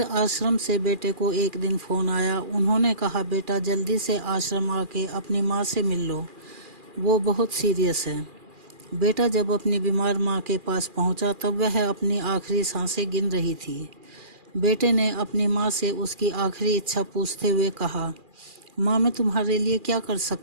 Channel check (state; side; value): late; left; 2.4 ms